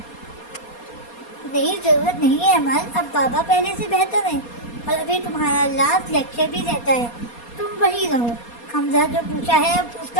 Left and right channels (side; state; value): right; late; 4.2 ms